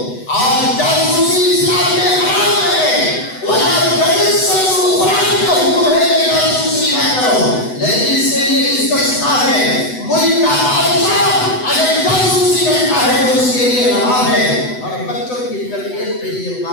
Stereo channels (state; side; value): late; right; 8.0 ms